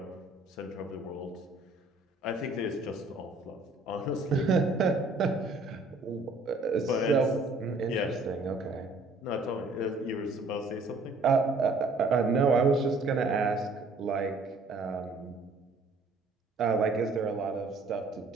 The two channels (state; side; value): quieter; left; 3.1 dB